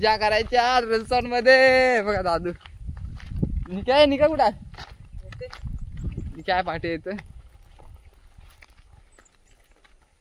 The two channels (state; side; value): identical; both; correlation 1.00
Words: करायच्या रिसॉर्ट मध्ये. बघा दादू निका कुठं काय पाठी येतोय.